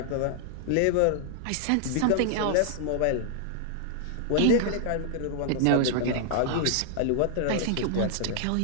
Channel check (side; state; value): both; different; correlation -0.01